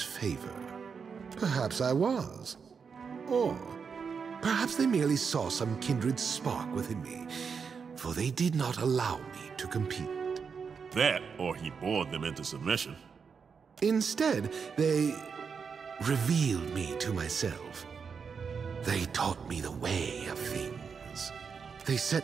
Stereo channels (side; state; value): left; quieter; 6.0 dB